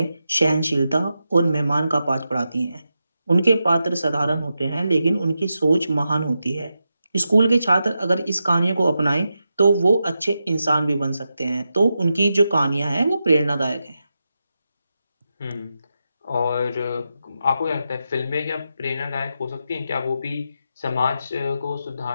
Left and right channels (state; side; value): inverted; both; correlation -0.88